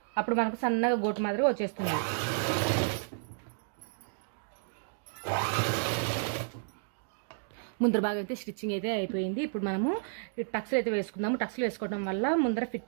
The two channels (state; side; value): silent; left; digital silence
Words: అప్పుడు మనకు సన్నగా గోటు మాదిరి వచ్చేస్తుంది. ముందర భాగం అయితే స్టిచ్చింగ్ అయితే అయిపోయింది. ఇప్పుడు మనము టక్స్లు అయితే వేసుకుందాము. టక్స్లు వేసుకోవడం వల్ల ముందర